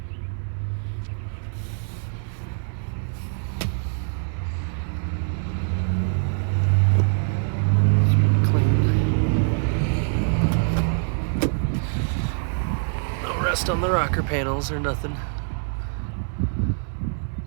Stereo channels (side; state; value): left; silent; 57 dB below the other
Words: It's pretty clean. No rust on the rocker panels or nothing.